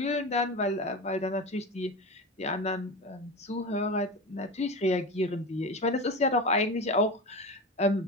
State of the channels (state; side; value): normal; both; correlation 0.26